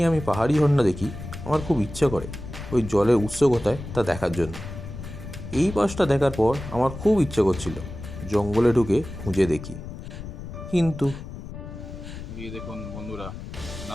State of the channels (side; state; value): left; noise; rumble, 10 dB below the sound